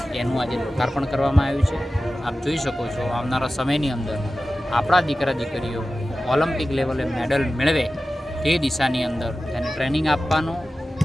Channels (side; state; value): both; normal; correlation 0.95